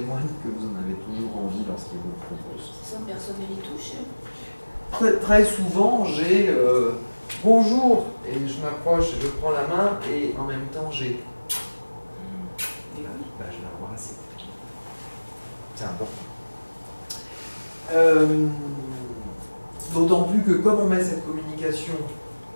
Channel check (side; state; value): both; inverted; correlation -1.00